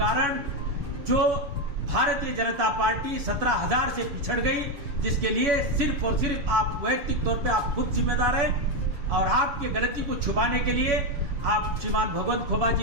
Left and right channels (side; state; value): left; late; 7.1 ms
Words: जो भारतीय जनता पार्टी 17,000 से पिछड़ गई, जिसके लिए सिर्फ और सिर्फ आप वैयक्तिक तौर पे आप खुद जिम्मेदार हैं। और आपकी गलती को छुपाने के लिए आप श्रीमान भगवंत खोबा